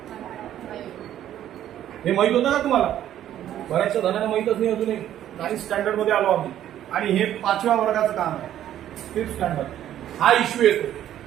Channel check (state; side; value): quieter; left; 11.6 dB